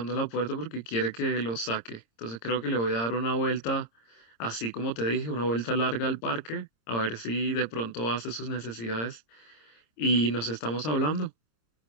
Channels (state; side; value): late; right; 26 ms